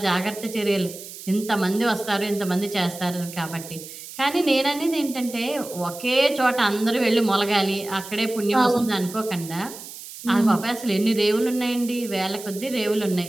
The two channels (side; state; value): right; noise; hiss, 13 dB below the sound